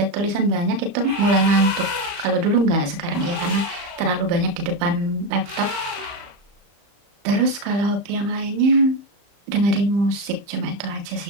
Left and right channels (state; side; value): late; left; 34 ms